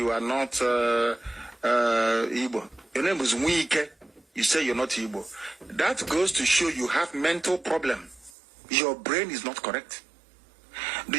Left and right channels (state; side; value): drops out; left; at 8.3 s